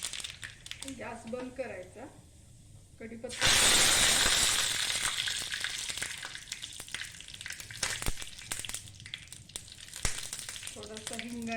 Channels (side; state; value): both; identical; correlation 1.00